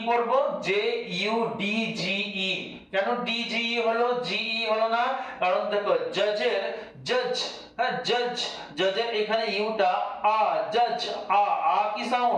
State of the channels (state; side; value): identical; both; correlation 1.00